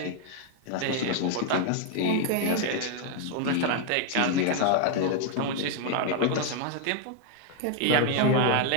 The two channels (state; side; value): different; both; correlation 0.00